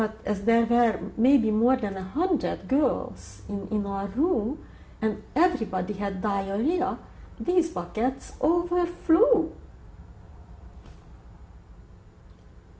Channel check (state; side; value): identical; both; correlation 1.00